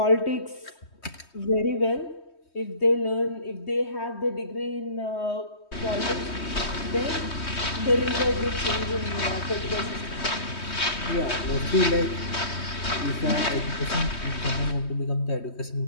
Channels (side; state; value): right; late; 3.2 ms